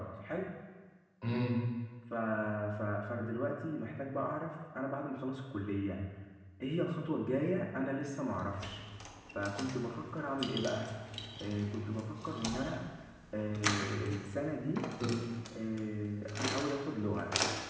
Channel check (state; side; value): identical; both; correlation 1.00